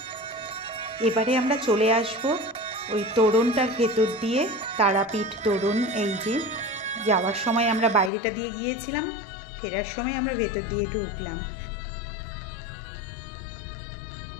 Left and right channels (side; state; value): right; drops out; at 8.1 s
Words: এবারে আমরা চলে আসব ওই তোরণটার ভেতর দিয়ে, তারাপীঠ তোরণ। এই যে যাওয়ার সময় আমরা বাইরেটা দিয়ে গিয়েছিলাম, ফেরার সময় আমরা ভেতর দিয়ে ঢুকলাম।